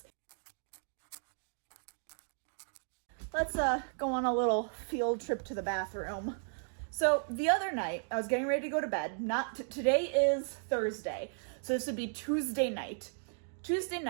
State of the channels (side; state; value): left; silent; digital silence